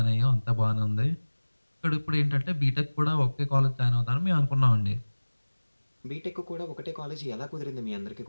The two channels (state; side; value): inverted; both; correlation -1.00